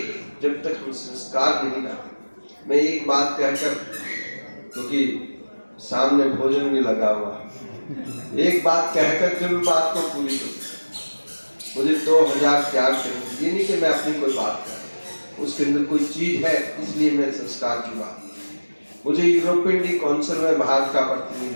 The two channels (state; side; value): inverted; both; correlation -1.00